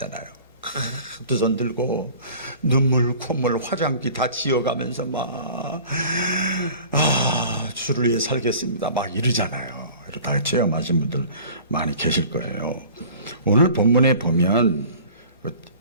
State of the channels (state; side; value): inverted; both; correlation -0.45